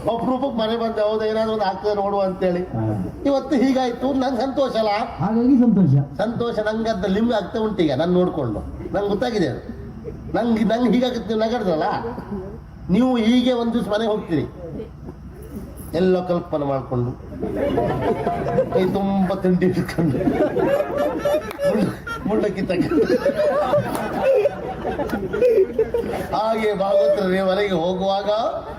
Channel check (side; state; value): both; identical; correlation 1.00